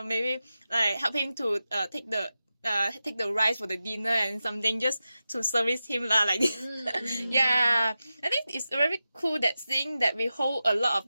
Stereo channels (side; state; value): both; inverted; correlation -0.92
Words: maybe like help him to take the rice for the dinner and something just to service him like this. Yeah, I think it's very cool that seeing that we hold a lot